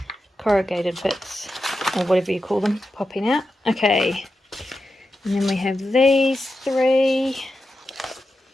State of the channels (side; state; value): both; normal; correlation 0.90